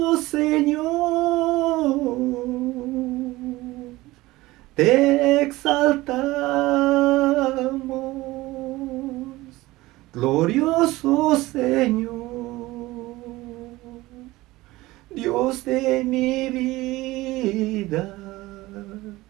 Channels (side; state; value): left; quieter; 19.0 dB